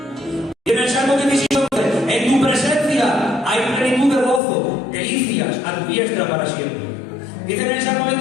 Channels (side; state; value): right; drops out; at 4.4 s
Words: Y en el Salmo 16:11: en tu presencia hay plenitud de gozo, delicias a tu diestra para siempre. Dice en el Salmo